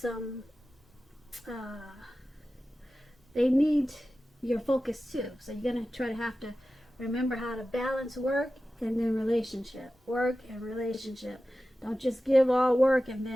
they need your focus too. So you're gonna have to remember how to balance work and then relationship. Work and relationship. Don't just give all work and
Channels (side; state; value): both; normal; correlation 0.94